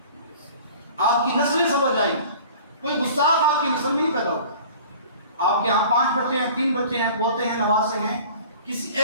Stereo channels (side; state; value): both; inverted; correlation -0.45